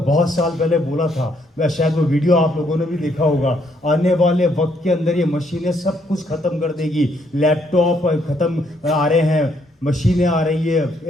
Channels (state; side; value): normal; both; correlation 0.71